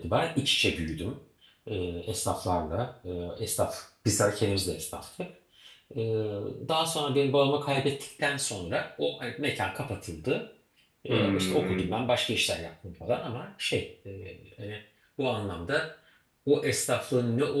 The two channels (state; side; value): identical; both; correlation 1.00